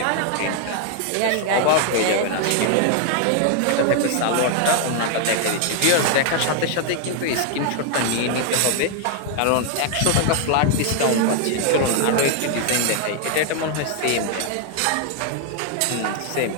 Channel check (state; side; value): different; both; correlation 0.00